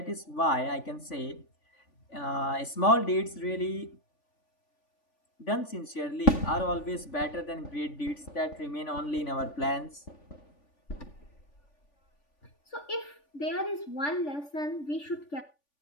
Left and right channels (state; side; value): late; right; 3.5 ms